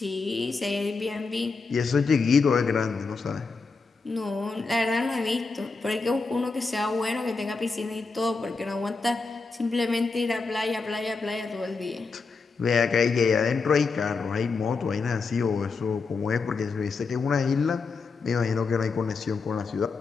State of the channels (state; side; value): quieter; right; 4.4 dB